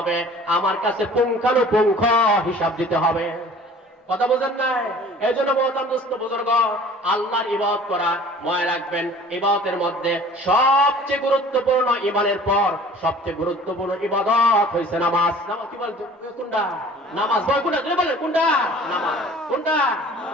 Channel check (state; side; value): normal; both; correlation 0.47